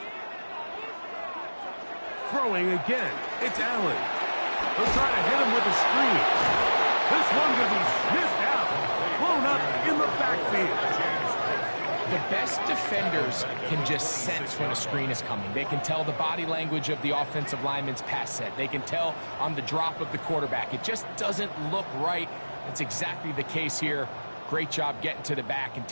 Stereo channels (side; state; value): both; inverted; correlation -1.00